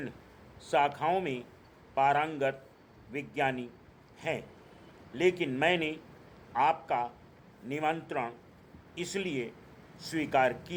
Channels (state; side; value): identical; both; correlation 1.00